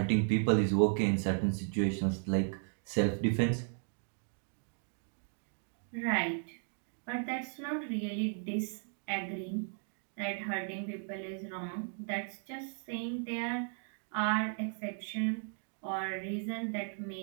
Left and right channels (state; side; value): silent; left; 54 dB below the other